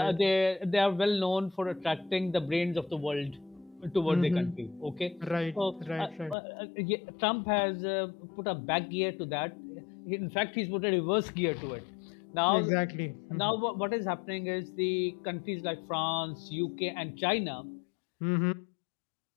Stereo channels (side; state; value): right; drops out; at 6.4 s